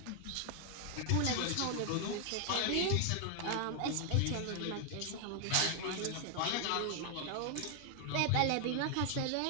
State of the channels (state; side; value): different; both; correlation 0.00